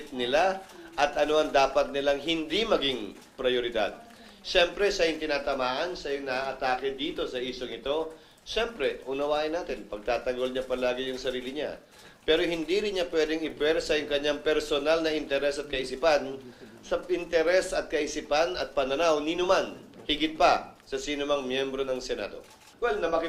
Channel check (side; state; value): both; identical; correlation 1.00